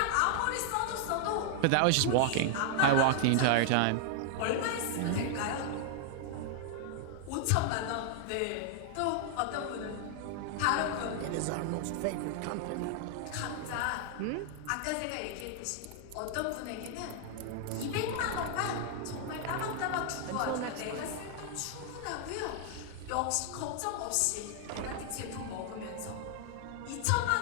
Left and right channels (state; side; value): different; both; correlation 0.00